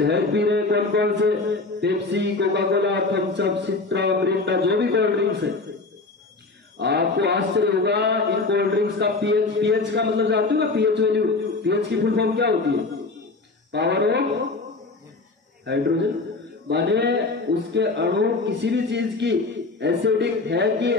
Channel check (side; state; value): right; quieter; 3.6 dB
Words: पी रहे कौन कौन से, Pepsi, Coca Cola, Thums Up, Citra, Mirinda, जो भी कोल्ड ड्रिंक्स है। आपको आश्चर्य होगा इन कोल्ड ड्रिंक्स का पीएच का मतलब जानते हो ना, पीएच वैल्यू, पीएच की फुल फॉर्म क्या होती है, पावर ऑफ हाइड्रोजन। माने उसके अणु किसी भी चीज की एसिडिक है कि